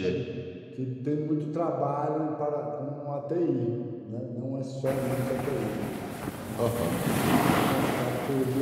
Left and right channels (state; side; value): identical; both; correlation 1.00